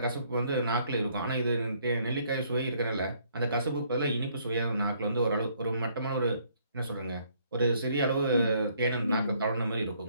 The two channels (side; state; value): both; inverted; correlation -0.66